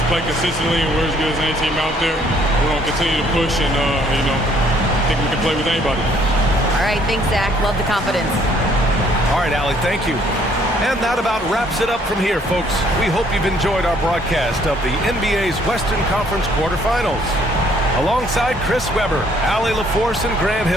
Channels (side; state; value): both; normal; correlation 0.63